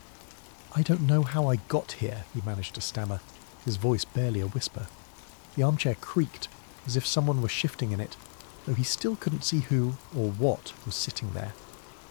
I don't know how I got here," he managed to stammer, his voice barely a whisper. The armchair creaked, as if someone were shifting in it, though he still couldn't see who or what was sitting there.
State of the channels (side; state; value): right; silent; 57 dB below the other